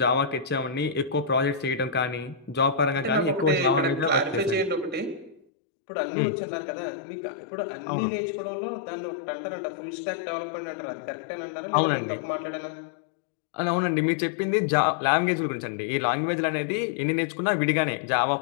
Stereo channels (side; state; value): right; drops out; at 5.4 s